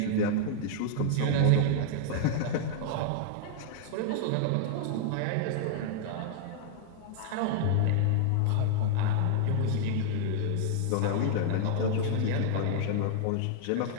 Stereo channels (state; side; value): different; both; correlation -0.01